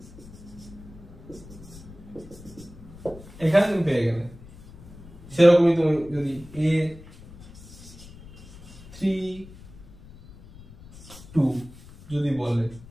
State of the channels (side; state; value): left; noise; rumble, 18 dB below the sound